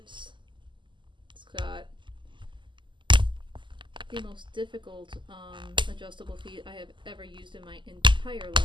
It's got the most difficult adjustable feet I have ever used in my entire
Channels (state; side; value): late; left; 0.24 ms